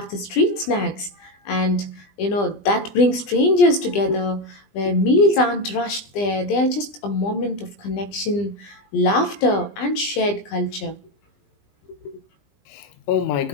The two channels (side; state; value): right; late; 20 ms